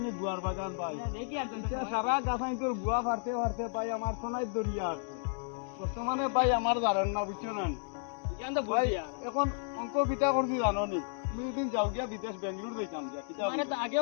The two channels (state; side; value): silent; right; digital silence